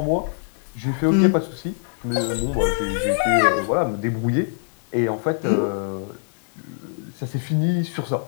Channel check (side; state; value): right; silent; digital silence